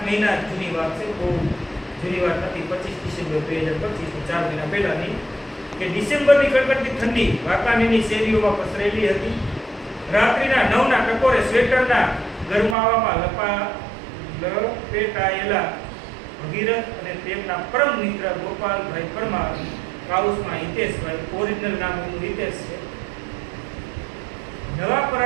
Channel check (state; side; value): drops out; left; at 12.8 s